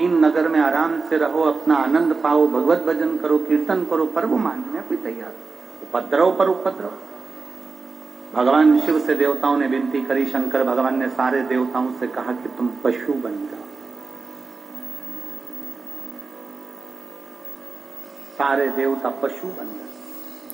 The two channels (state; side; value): quieter; left; 4.3 dB